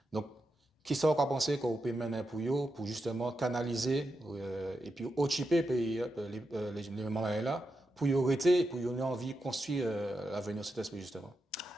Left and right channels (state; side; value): normal; both; correlation 0.87